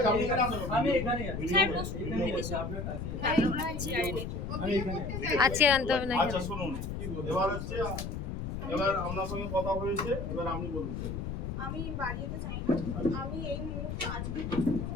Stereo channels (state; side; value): noise; left; rumble, 5 dB below the sound